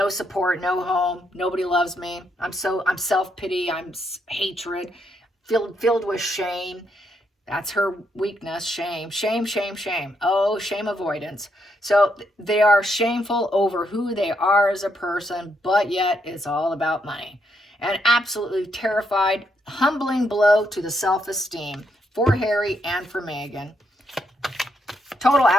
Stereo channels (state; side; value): normal; both; correlation 0.77